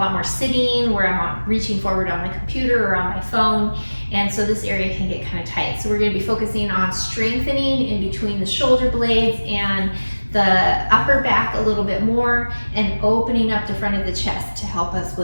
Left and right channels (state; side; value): inverted; both; correlation -1.00